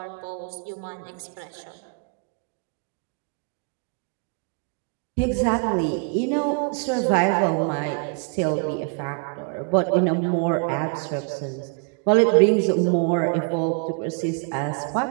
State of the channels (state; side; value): quieter; left; 39.3 dB